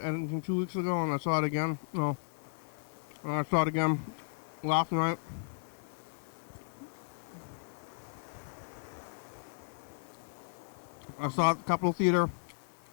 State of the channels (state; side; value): silent; right; digital silence